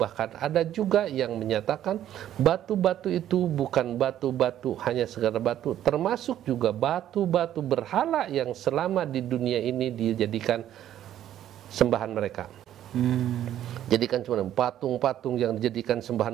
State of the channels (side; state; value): left; quieter; 11.6 dB